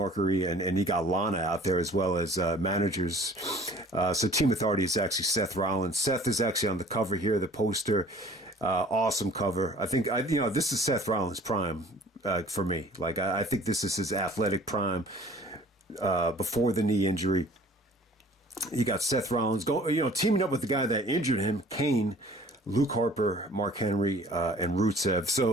and you got Lana out there as well as managers. So Team Authority is actually Seth Rollins. Seth is actually on the cover here, the poster. Awesome cover. I think, this is Seth Rollins' prime for me. Like, I think this is his athletic prime before the knee injury. You got Seth Rollins teaming up with the guy that injured him, Kane, Luke Harper, Mark Henry, and Rusev.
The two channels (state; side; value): normal; both; correlation 0.50